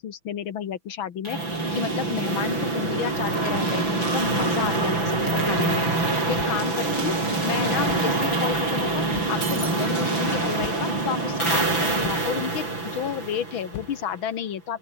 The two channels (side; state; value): right; late; 6.0 ms